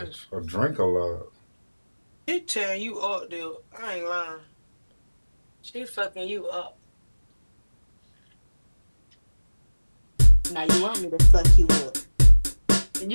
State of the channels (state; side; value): inverted; both; correlation -1.00